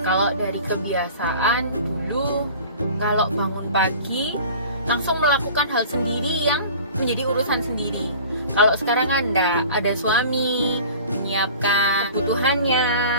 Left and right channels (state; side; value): inverted; both; correlation -0.43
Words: Kalau dari kebiasaan dulu, kalau bangun pagi langsung melakukan hal sendiri yang menjadi urusan sendiri. Kalau sekarang kan ada suami menyiapkan kebutuhannya,